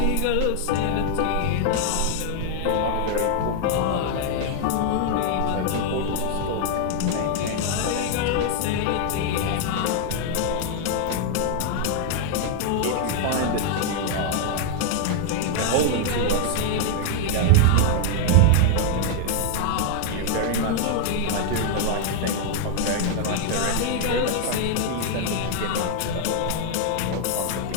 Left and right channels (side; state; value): both; different; correlation 0.00